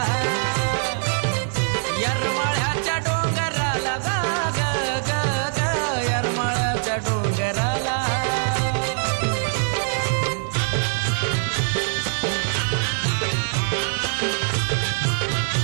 येरमाळ्याच्या डोंगराला ग ग ग ग, येरमाळ्याच्या डोंगराला.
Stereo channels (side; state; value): left; silent; digital silence